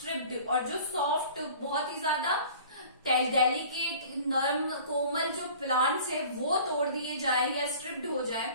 और जो सॉफ्ट बहुत ही ज्यादा डेलिकेट नर्म कोमल जो प्लांट्स है वो तोड़ दिए जाए या स्ट्रिप्ड हो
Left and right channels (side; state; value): both; inverted; correlation -0.46